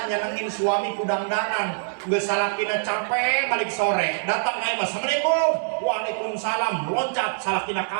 nyenengin suami kudang-dangan. Nggak salakina capek balik sore datang naik assalamualaikum waalaikumsalam loncat salakina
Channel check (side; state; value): left; silent; 62 dB below the other